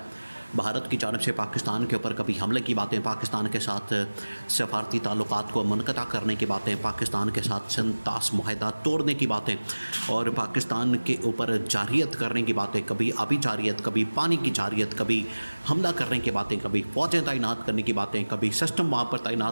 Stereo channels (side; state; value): both; inverted; correlation -1.00